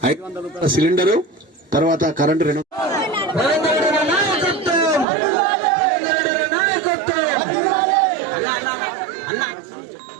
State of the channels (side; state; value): left; drops out; at 5.1 s